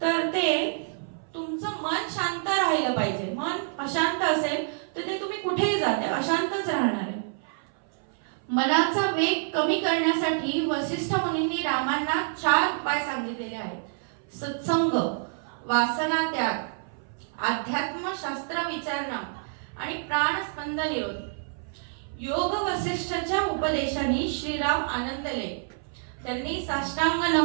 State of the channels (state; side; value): silent; left; 57 dB below the other